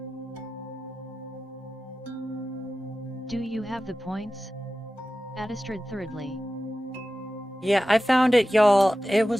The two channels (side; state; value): both; normal; correlation 0.94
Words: Do you have the points? Adistrid thirdly. Yeah, I found it, y'all. It